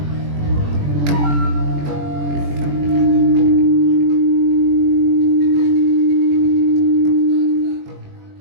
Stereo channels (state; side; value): late; left; 21 ms